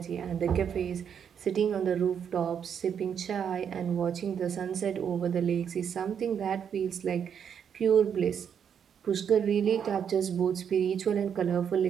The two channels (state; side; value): quieter; left; 7.9 dB